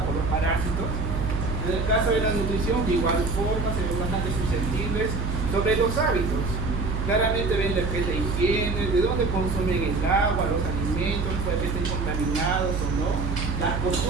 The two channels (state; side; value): noise; right; hum, 2 dB below the sound